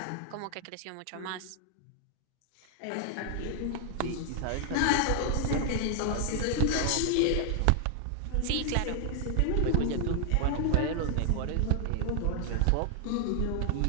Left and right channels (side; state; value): both; different; correlation 0.00